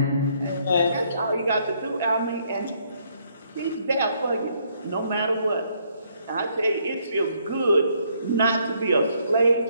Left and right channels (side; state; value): both; inverted; correlation -0.69